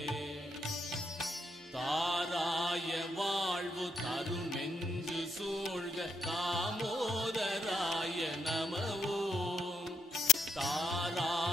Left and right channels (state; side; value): normal; both; correlation 0.78